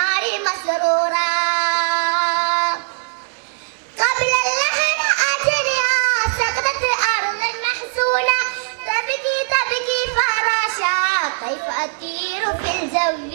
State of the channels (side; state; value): left; silent; 66 dB below the other